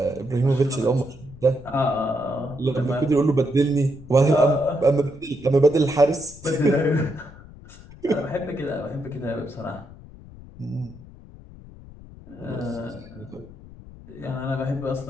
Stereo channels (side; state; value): left; noise; rumble, 19 dB below the sound